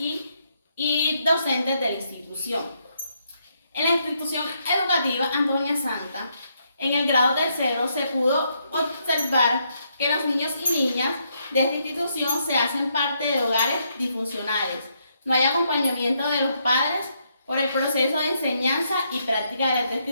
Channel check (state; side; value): inverted; both; correlation -0.76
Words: docentes de la institución. En la institución educativa Antonia Santa, en el grado tercero, se pudo observar que los niños y niñas de esta institución se hacen parte de hogares disfuncionales. No hay acompañamiento de los padres por el proceso de enseñanza y práctica de la